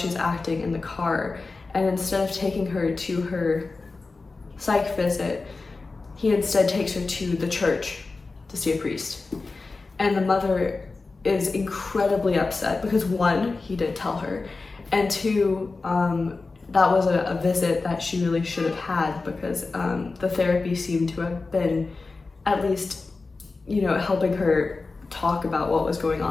acting in the car, and instead of taking her to her psych visit, he instead takes her to the church to see a priest. And the mother is incredibly upset because, one, he didn't tell her, and two, that was a visit that she really should have had, because the therapy seemed to have been at least, helping her talk about what was going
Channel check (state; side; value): quieter; right; 3.8 dB